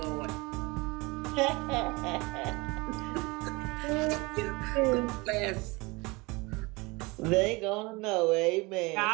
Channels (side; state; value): left; quieter; 24.9 dB